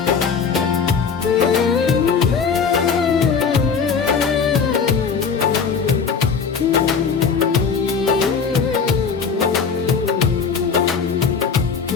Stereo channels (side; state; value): right; quieter; 5.8 dB